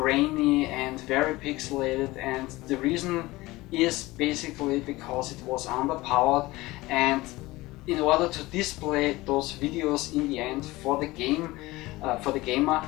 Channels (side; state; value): right; quieter; 19.8 dB